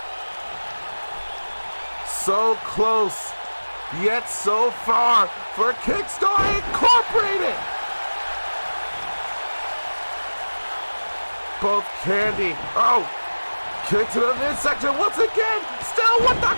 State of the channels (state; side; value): inverted; both; correlation -1.00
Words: So close, yet so far for Kickstar Incorporated. Both Candy, oh, kick to the midsection once again, still with the